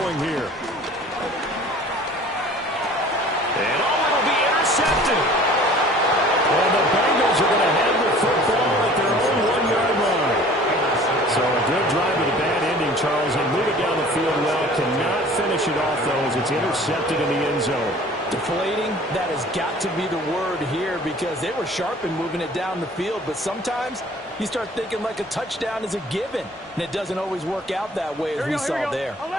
here. And it'll be intercepted. And the Bengals are going to have the football at their own 1-yard line. So a good drive with a bad ending, Charles, and move it down the field well. Cannot finish it off, though, as it's intercepted in the end zone. Deflating, that has got to be the word here, because they were sharp in moving it down the field, but sometimes you start thinking like a touchdown is a given, and it doesn't always work out that way as we saw there.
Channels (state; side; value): normal; both; correlation 0.48